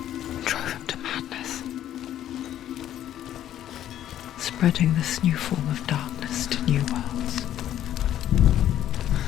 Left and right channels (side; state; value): right; quieter; 11.6 dB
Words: drove him to madness, spreading this new form of darkness to new worlds,